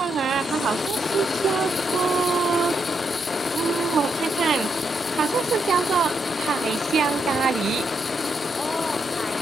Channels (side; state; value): both; normal; correlation 0.80